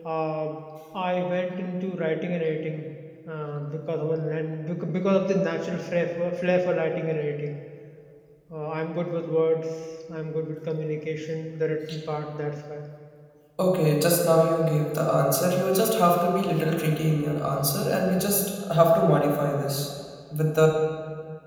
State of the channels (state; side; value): identical; both; correlation 1.00